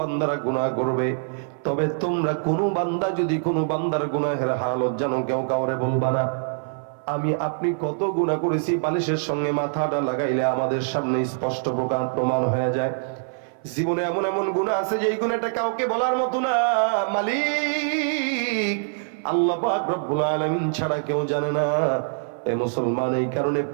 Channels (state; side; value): silent; left; 55 dB below the other